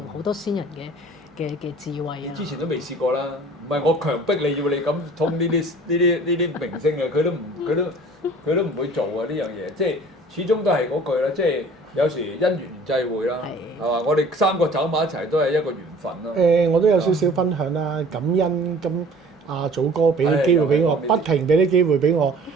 好多先人嘅智慧啊！之前都未試過啦，唔係我強迫你要你咁通呢啲明星嘅，佢都唔會做啊呢樣嘢，即係始終都係嗰句啦，即係有時因緣際會啦，係嘛？我哋3個走埋一齊都係一個緣分咯。我都有少少分享啦，感恩咁阿祖哥俾啲機會俾我，不停俾啲機會俾我。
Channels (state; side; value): normal; both; correlation 0.48